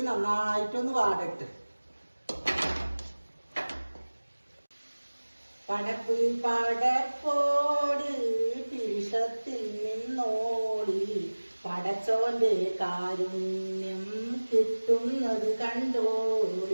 നന്നായിട്ടൊന്ന് വാടട്ടെ. പടപ്പ് പടപ്പോട് പിരിശത്തിൽ നിന്നോടി, പടച്ചോന്റെ കാരുണ്യം കിട്ടുന്നത്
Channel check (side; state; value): both; inverted; correlation -1.00